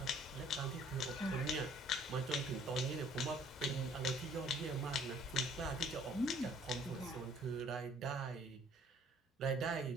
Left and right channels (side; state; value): both; normal; correlation 0.58